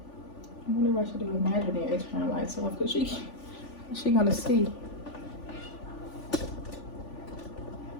I wonder if I should do imaginary turn lights off because she gonna see.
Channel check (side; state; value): right; late; 3.5 ms